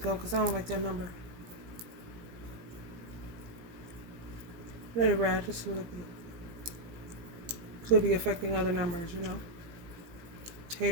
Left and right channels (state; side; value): late; left; 17 ms